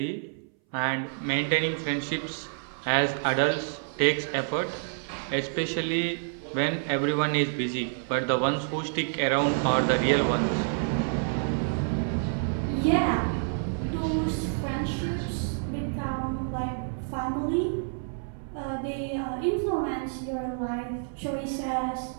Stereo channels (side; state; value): left; silent; 59 dB below the other